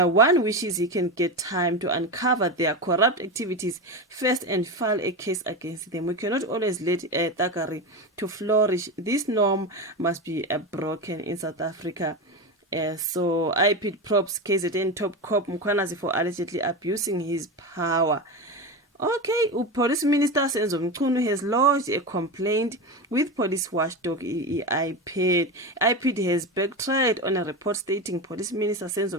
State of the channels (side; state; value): both; normal; correlation 0.19